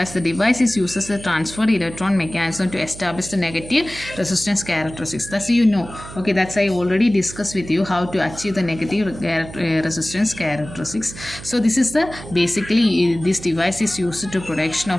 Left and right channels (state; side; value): noise; right; hum, 14 dB below the sound